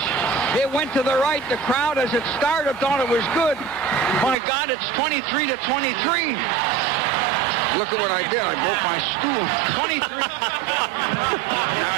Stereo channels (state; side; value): drops out; left; at 4.4 s